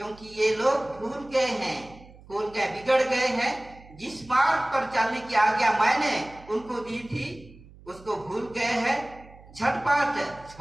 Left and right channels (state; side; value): noise; right; hum, 22 dB below the sound